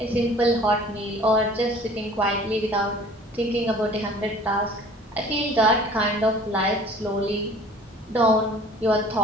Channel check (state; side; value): normal; both; correlation 0.49